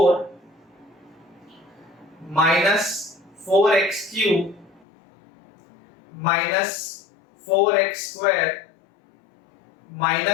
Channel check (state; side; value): drops out; right; at 4.8 s